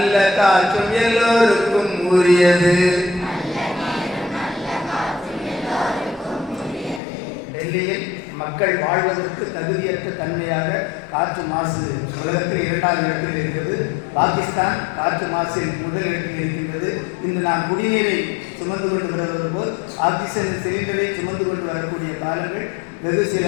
காற்றும் எல்லோருக்கும் உரியது. டெல்லியில் மக்கள் வாழ்வதற்கு தகுதியற்ற தன்மையாக காற்று மாசு உலகத்தில் 2வது இடத்தில் இருக்கிறது. பாகிஸ்தான் காற்று மாசில் முதல் இடத்தில் இருக்கின்றது. இன்று நாம் குடிநீரை சுமந்து கொண்டு வருவது போல் ஆக்சிஜன் சிலிண்டரை சுமந்து கொண்டு வரக்கூடிய காலங்கள் வெகு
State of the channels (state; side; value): drops out; right; at 7.0 s